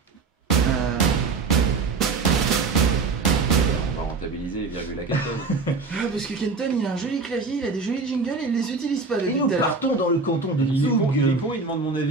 On va rentabiliser les virgules à Kenton. Parce que Kenton, il a un joli clavier, il a des jolis jingles et il les utilise pas Et depuis nous tout à l'heure. partons dans le canton de Il est con, Zug. il demande mon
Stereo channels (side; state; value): left; quieter; 4.2 dB